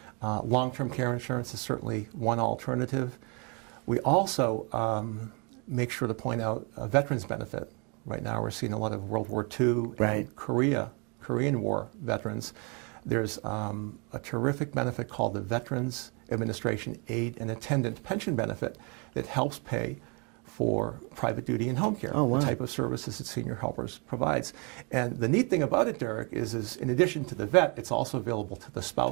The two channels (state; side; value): quieter; left; 33.3 dB